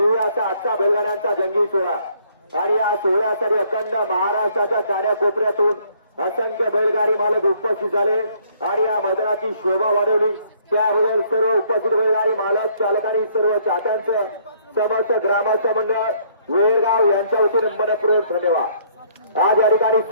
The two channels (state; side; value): inverted; both; correlation -0.63